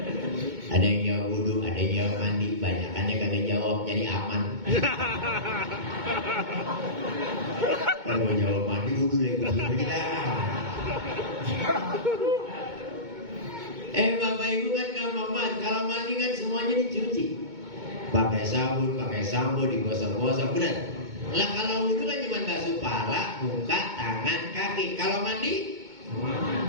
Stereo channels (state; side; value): late; left; 2.2 ms